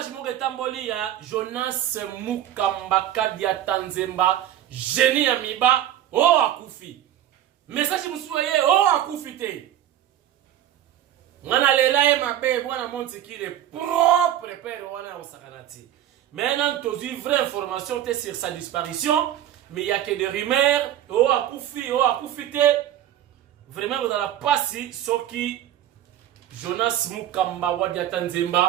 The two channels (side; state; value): left; quieter; 11.7 dB